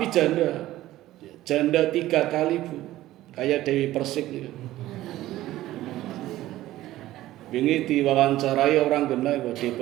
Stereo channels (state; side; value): quieter; left; 15.3 dB